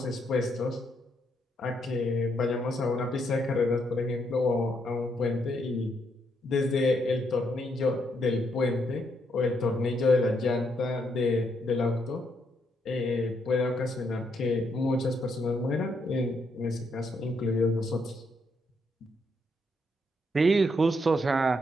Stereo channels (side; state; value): both; normal; correlation 0.76